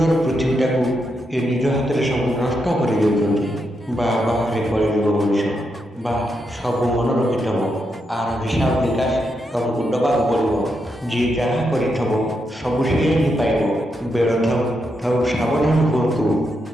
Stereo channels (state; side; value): normal; both; correlation 0.83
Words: ପୃଥିବୀଟାକୁ ଏ ନିଜ ହାତରେ ସବୁ ନଷ୍ଟ କରିଦେଉଛନ୍ତି। ବାହାରେ କଳିଯୁଗ ମଣିଷ, ସବୁ ମନେ ରଖିଥବ। ଆର ହିସାବ ନିକାଶ ତମକୁ ଦେବାକୁ ପଡ଼ିବ। ଯିଏ ଯାହା କରିଥବ ସବୁ ସିଏ ହିଁ ପାଇବ। ବେଳ ଥାଉ ସାବଧାନ ହୁଅନ୍ତୁ।